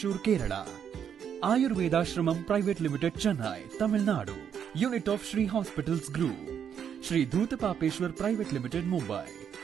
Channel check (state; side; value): quieter; left; 8.2 dB